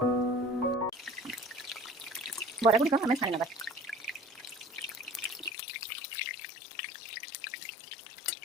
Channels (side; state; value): right; drops out; at 5.5 s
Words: बरा गुड़िक आम छाणी नबा।